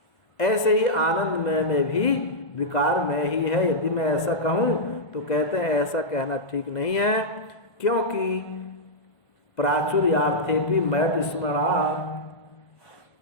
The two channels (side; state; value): right; late; 1.5 ms